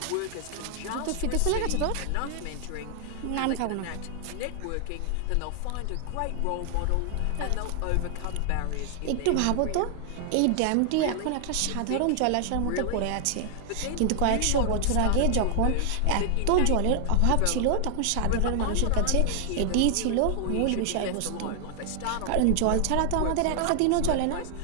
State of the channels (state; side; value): different; both; correlation 0.00